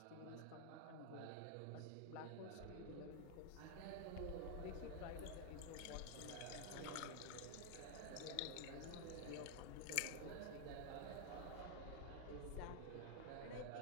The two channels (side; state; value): both; different; correlation 0.00